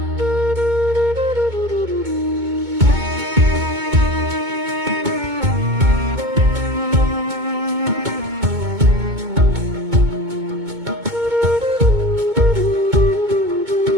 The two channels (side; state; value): left; late; 2.2 ms